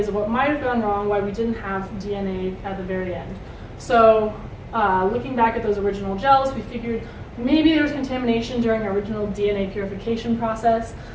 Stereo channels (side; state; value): both; identical; correlation 1.00